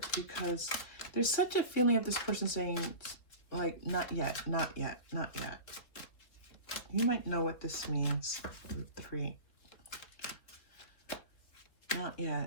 because there's such a feeling of this person saying, like, not yet, not yet, not yet. You might know what this means. Group 3. Not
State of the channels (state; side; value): late; right; 3.7 ms